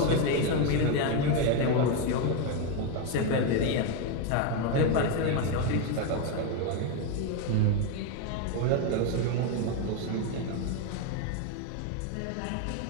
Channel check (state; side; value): different; both; correlation 0.02